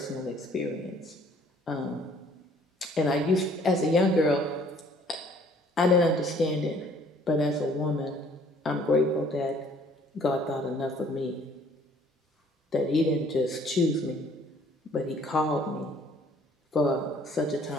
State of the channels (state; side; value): normal; both; correlation 0.58